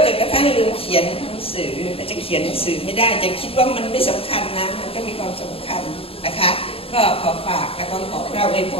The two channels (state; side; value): late; right; 0.27 ms